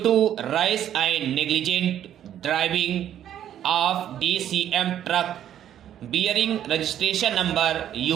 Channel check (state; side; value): quieter; left; 10.7 dB